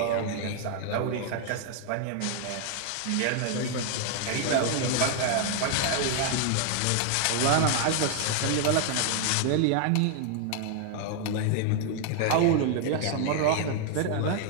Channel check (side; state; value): both; different; correlation 0.00